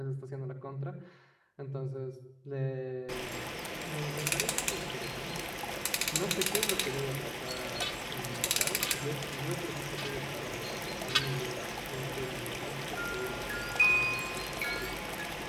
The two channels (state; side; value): identical; both; correlation 1.00